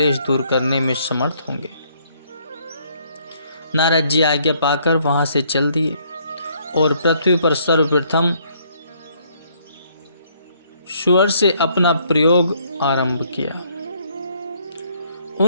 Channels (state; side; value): inverted; both; correlation -0.67